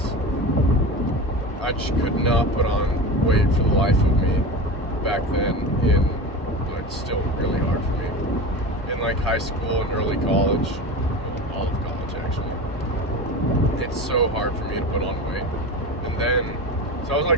I just could not put on weight for the life of me back then. It's still really hard for me in like high school and early college, all of college actually. It's so hard for me to put on weight. And then, so I was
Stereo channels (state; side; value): normal; both; correlation 0.28